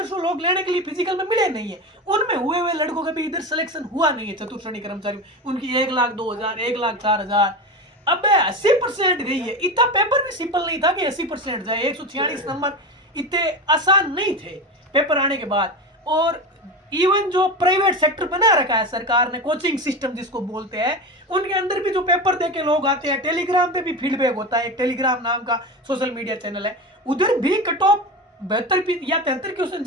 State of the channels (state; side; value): normal; both; correlation 0.23